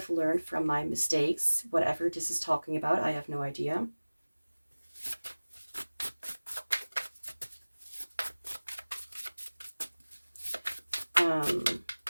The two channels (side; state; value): both; inverted; correlation -1.00